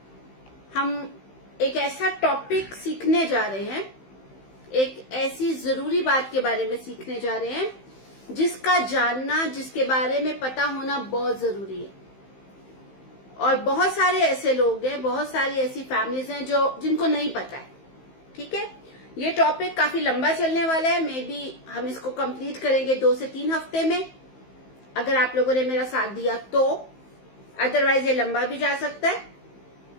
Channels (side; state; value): right; late; 15 ms